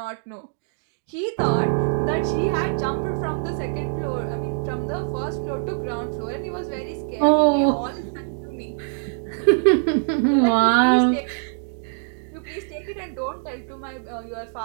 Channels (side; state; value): left; silent; digital silence